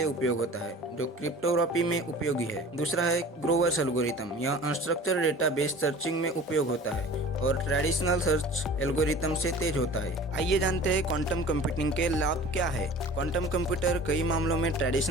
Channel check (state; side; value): normal; both; correlation 0.42